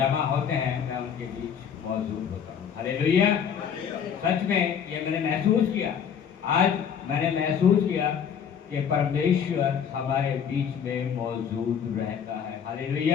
होते हैं मैं उनके बीच मौजूद होता हूँ। हालेलुया। सच में ये मैंने महसूस किया, आज मैंने महसूस किया कि परमेश्वर हमारे बीच में मौजूद रहता है।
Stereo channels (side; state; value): right; quieter; 7.7 dB